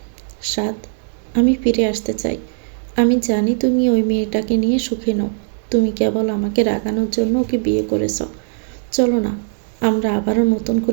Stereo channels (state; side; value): silent; left; 67 dB below the other